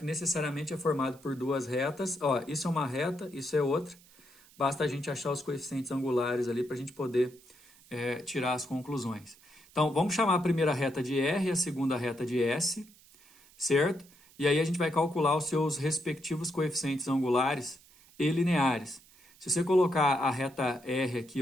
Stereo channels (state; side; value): noise; right; hiss, 26 dB below the sound